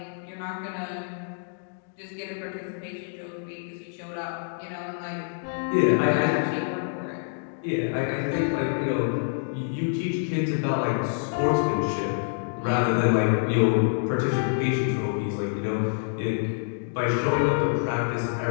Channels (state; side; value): silent; right; digital silence